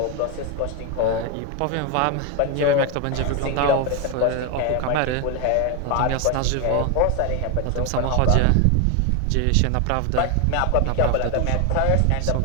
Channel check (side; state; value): both; different; correlation 0.01